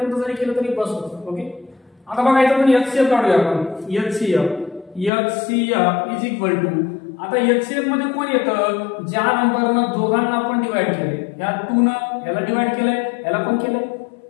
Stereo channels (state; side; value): drops out; right; at 5.1 s